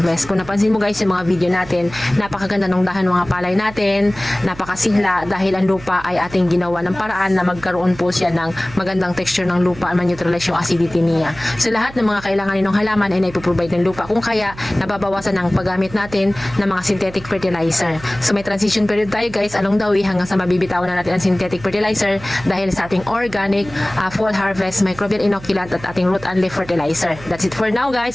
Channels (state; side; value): noise; right; hum, 17 dB below the sound